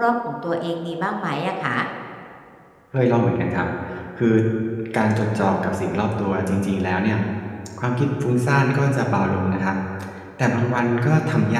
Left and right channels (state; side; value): identical; both; correlation 1.00